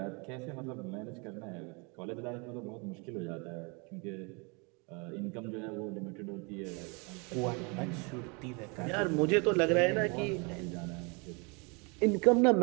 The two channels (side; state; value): left; quieter; 31.5 dB